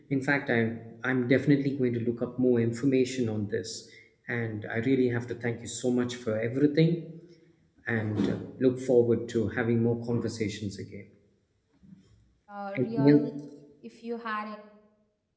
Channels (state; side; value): identical; both; correlation 1.00